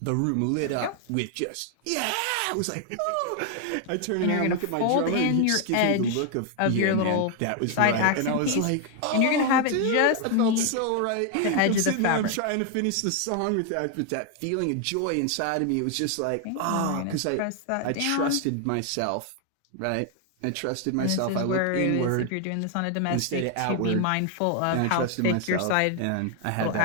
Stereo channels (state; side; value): different; both; correlation 0.00